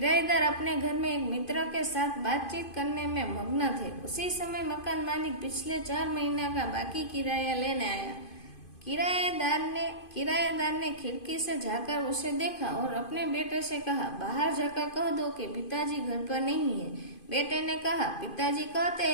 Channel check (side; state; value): right; late; 2.5 ms